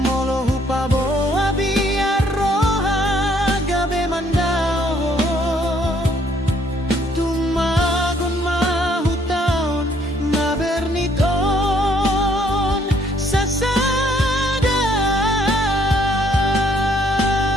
hupabo abia roha gabe mandao tumagon mahutaon na berniton sasada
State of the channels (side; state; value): both; normal; correlation 0.65